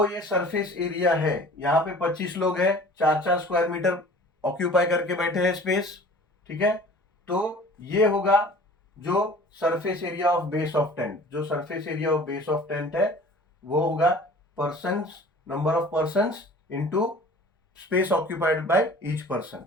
ये सरफेस एरिया है, यहाँ पे 25 लोग हैं, 4-4 स्क्वायर मीटर ऑक्यूपाई करके बैठे हैं स्पेस। ठीक है, तो ये होगा जो surface area of base of tent, जो surface area of base of tent है वो होगा persons, number of persons into space occupied by each person.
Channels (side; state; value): both; normal; correlation 0.46